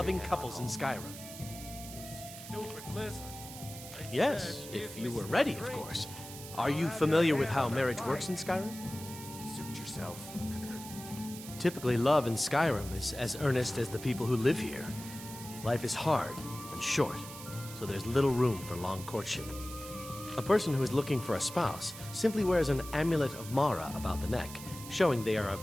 couples in Skyrim. Yes, if you were ready, of course. Are you familiar with how marriage works in Skyrim? Suit yourself. Typically, love in Skyrim is as earnest as the people who live here. Life is hard and short, so there's little room for long courtship. A person who is looking for a spouse simply wears an amulet of Mara about the neck, showing they are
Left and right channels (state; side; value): noise; right; hiss, 13 dB below the sound